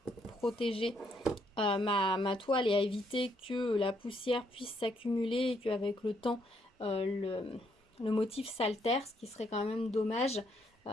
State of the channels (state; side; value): normal; both; correlation 0.72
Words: protéger ma toile et à éviter que la poussière puisse s'accumuler et qu'avec le temps le motif s'altère, ce qui serait quand même dommage.